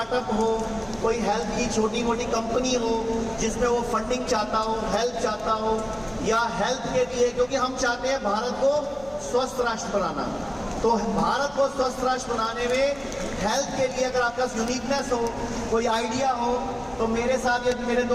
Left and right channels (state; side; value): noise; left; hum, 23 dB below the sound